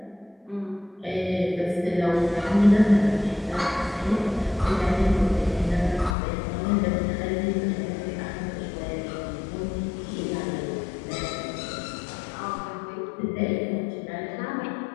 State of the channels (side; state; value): right; drops out; at 6.2 s